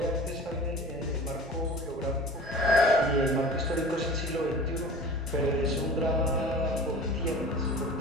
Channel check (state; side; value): normal; both; correlation 0.39